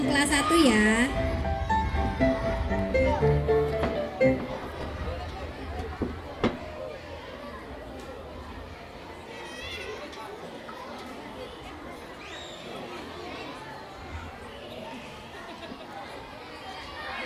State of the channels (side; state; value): both; identical; correlation 1.00